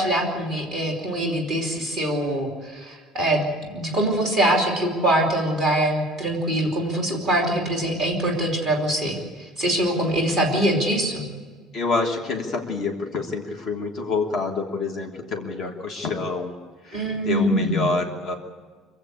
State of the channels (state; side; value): normal; both; correlation 0.45